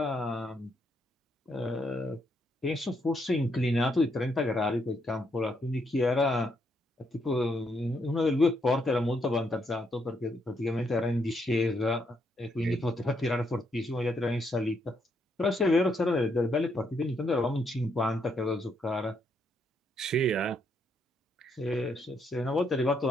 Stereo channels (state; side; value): normal; both; correlation 0.75